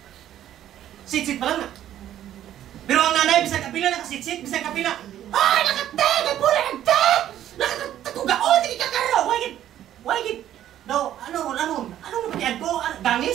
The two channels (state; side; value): quieter; left; 11.7 dB